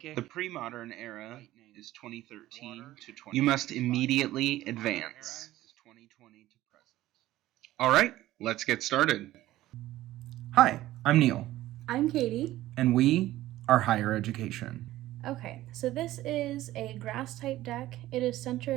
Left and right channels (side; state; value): left; quieter; 15.4 dB